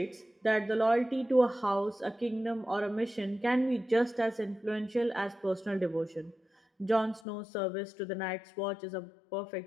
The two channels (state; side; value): drops out; right; at 7.2 s